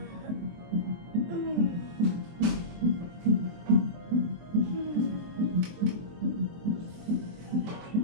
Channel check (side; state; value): left; late; 23 ms